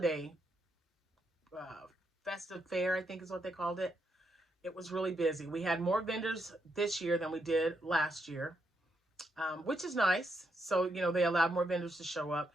festive fair, I think is what they called it. It was really busy. We had more vendors this year than we did last year, which is nice. So, they allowed more vendors to show up.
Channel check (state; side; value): normal; both; correlation 0.80